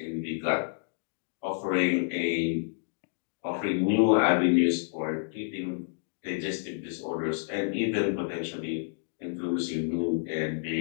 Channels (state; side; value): silent; right; digital silence